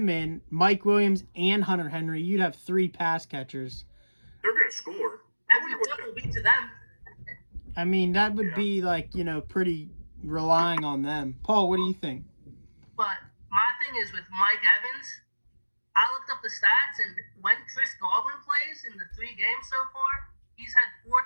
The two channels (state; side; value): inverted; both; correlation -1.00